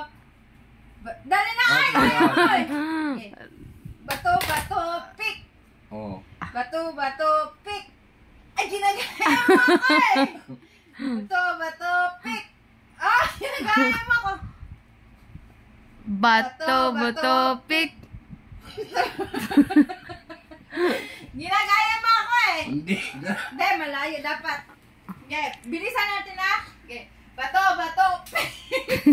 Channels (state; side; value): identical; both; correlation 1.00